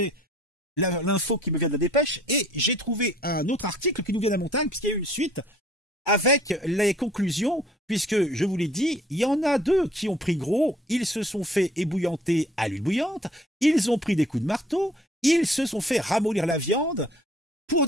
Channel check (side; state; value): both; normal; correlation 0.56